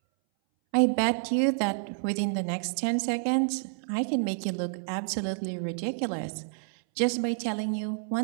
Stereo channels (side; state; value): left; silent; 59 dB below the other